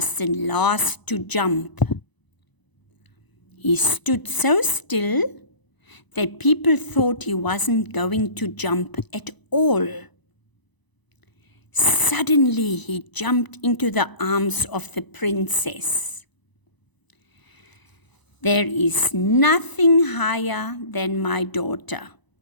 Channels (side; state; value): right; late; 1.0 ms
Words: the last to jump. He stood so still that people thought he wasn't going to jump at all. Suddenly he jumped into the arms of the princess. There is nothing higher than my daughter,